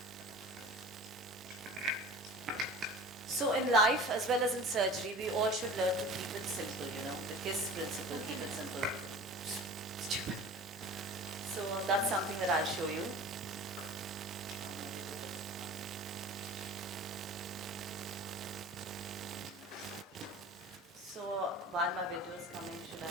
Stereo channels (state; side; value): normal; both; correlation 0.39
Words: So in life as well as in surgery, we all should learn to keep it simple, you know, the KISS principle, keep it simple. Stupid. So that's something that I'll show you. So while my video is coming, should